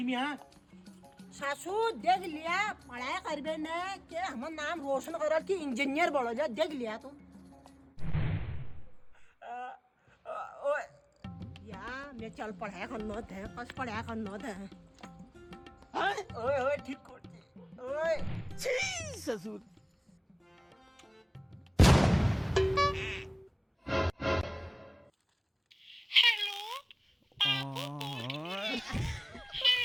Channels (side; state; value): both; identical; correlation 1.00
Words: मी हां सासू देख लिया पढ़ाई करबे ने के हमर नाम रोशन करल की इंजीनियर बनो जा देख लिया तू ओए या मैं चल पढ़ाई करनो थे बस पढ़ाई करनो थे ओए ओए ठीक करते ओए छी ससुर